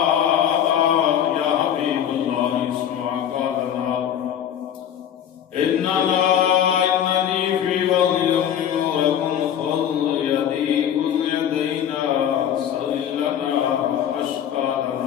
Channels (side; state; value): right; quieter; 9.6 dB